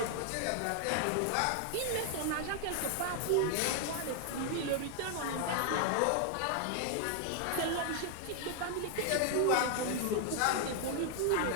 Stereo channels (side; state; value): both; different; correlation 0.00